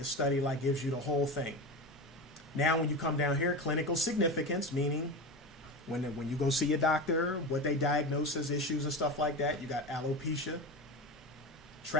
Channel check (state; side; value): normal; both; correlation 0.25